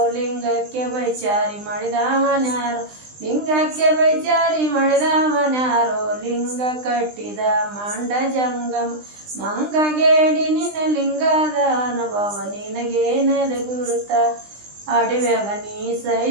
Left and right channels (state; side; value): late; left; 20 ms